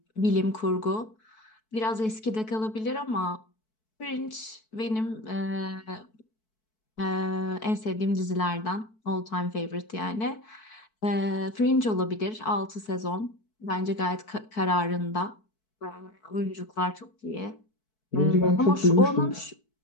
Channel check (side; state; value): right; late; 4.6 ms